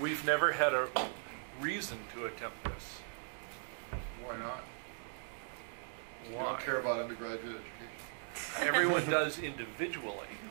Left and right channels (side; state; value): left; silent; digital silence